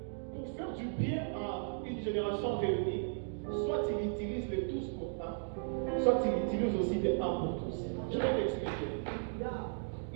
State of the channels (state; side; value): silent; left; digital silence